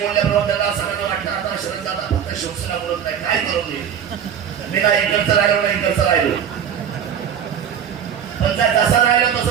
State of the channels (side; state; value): left; quieter; 8.5 dB